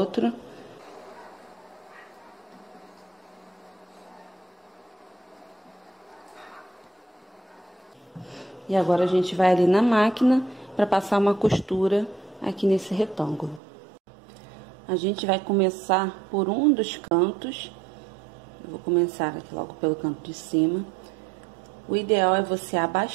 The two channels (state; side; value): drops out; left; at 13.6 s